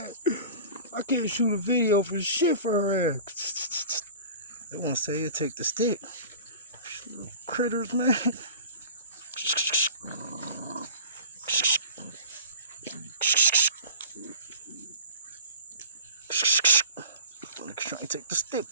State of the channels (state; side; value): inverted; both; correlation -0.40